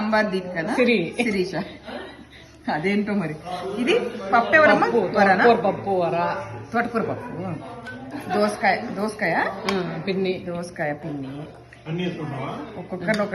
దీప్ కదా శిరీష. అదేంటో మరి. ఇది పప్పు ఎవరమ్మా? పప్పు వర, తోటకూర పప్పు, దోసకాయ పిన్ని, ఒక్కొక్కరు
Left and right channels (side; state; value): both; identical; correlation 1.00